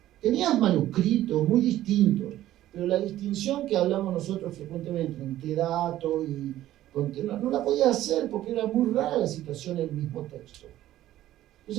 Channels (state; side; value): quieter; left; 13.8 dB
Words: Tenías manuscritos muy distintos, pero la distinción que hablamos nosotros frecuentemente entre dato y contenido no la podía hacer porque era muy rara la situación en el mismo texto.